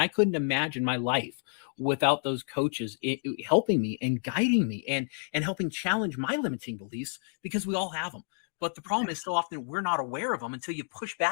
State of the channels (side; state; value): right; silent; digital silence